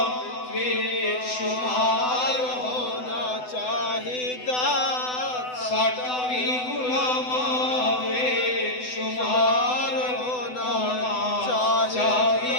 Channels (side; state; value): right; late; 8.0 ms